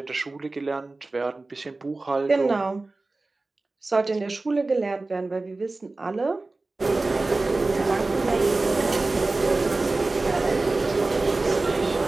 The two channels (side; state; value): left; quieter; 3.3 dB